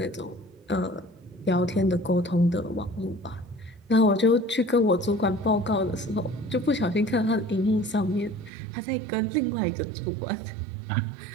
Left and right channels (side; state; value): left; drops out; at 8.5 s